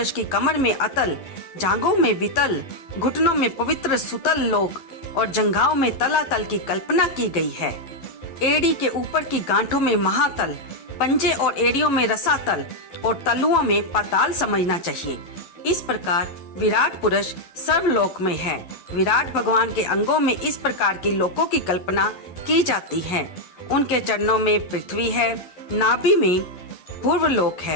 की कमर में अतल, जांघों में वितल, घुटनों में पवित्र सुतल लोक और जंघाओं में तलातल की कल्पना की गई है। एड़ी के ऊपर की गांठों में महातल, पंजे और एड़ियों में रसातल और तलुओं में पाताल समझना चाहिए। इस प्रकार विराट पुरुष सर्वलोक में है। विराट भगवान के अंगों में इस प्रकार की लोकों की कल्पना की जाती है। उनके चरणों में पृथ्वी है, नाभि में पूर्वलोक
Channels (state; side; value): late; right; 12 ms